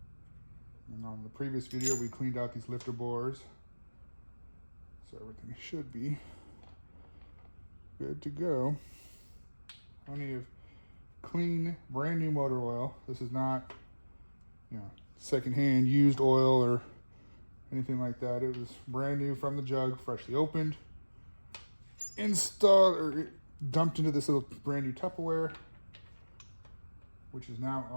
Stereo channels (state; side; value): inverted; both; correlation -1.00